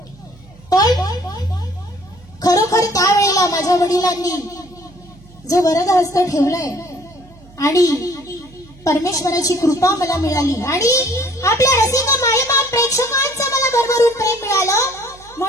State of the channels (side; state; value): right; noise; hum, 24 dB below the sound